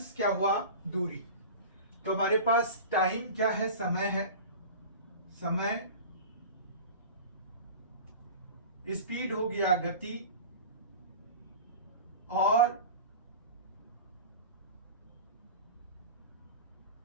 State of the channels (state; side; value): inverted; both; correlation -0.34